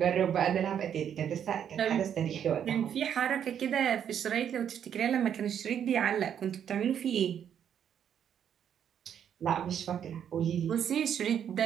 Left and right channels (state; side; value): quieter; left; 8.9 dB